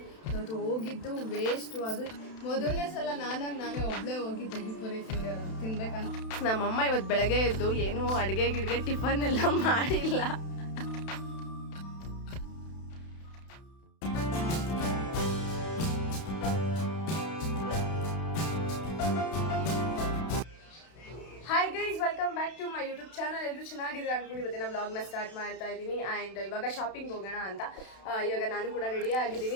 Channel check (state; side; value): late; right; 32 ms